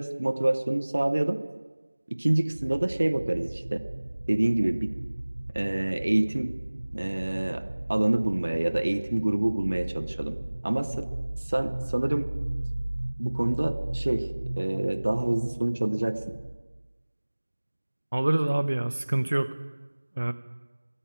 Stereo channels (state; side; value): inverted; both; correlation -1.00